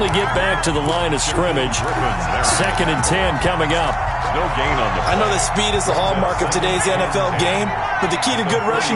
get back to the line of scrimmage. 2nd and 10 coming up. No gain on the play. I know that speed is the hallmark of today's NFL game, but the key to good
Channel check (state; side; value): identical; both; correlation 1.00